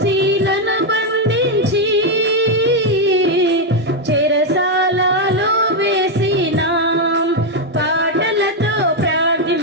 శీలను బంధించి చెరసాలలో వేసిన, పాటలతో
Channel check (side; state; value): both; normal; correlation 0.03